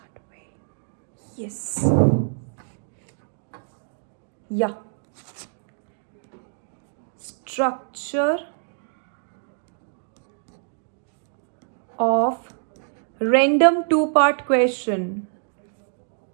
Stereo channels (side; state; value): left; silent; digital silence